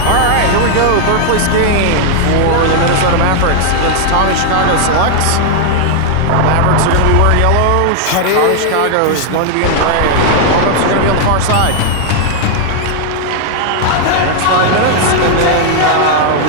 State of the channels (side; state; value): both; different; correlation 0.00